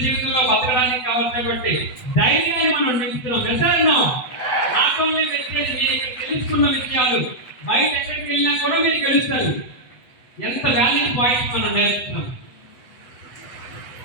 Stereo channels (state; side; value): late; right; 8.1 ms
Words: జీవితంలో బతకడానికి కావాల్సినటువంటి ధైర్యాన్ని మనం నింపుతున్నాం. వెళ్తాను నాట్ ఓన్లీ వచ్చేది మీరు ఇక్కడ తెలుసుకున్న విషయాలు బయట ఎక్కడికి వెళ్ళినా కూడా మీరు గెలుస్తారు. ఎంత వాల్యూ పాయింట్స్ మనం నేర్చుకున్నాం.